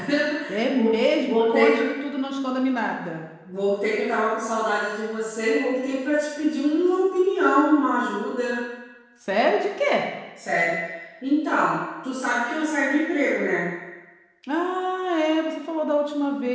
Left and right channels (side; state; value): both; identical; correlation 1.00